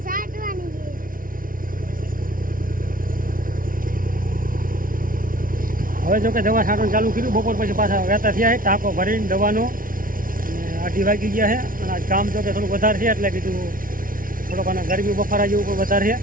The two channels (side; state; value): left; late; 0.40 ms